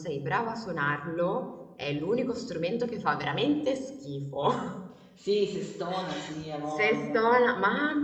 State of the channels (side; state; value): both; identical; correlation 1.00